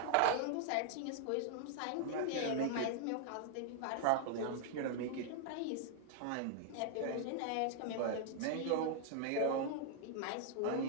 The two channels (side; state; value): both; different; correlation 0.00